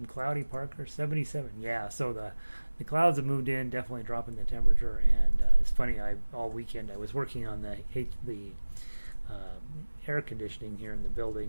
Cloudy Parker, 77. Yeah, so the clouds have moved in, definitely dropping the temperature. And it's funny, all weekend I was working on the air conditioning here in the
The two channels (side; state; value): both; inverted; correlation -1.00